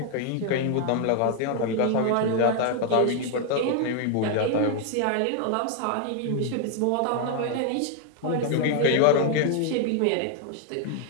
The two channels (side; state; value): both; different; correlation 0.00